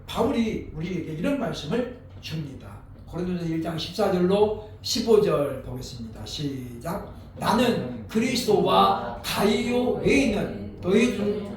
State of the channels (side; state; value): both; identical; correlation 1.00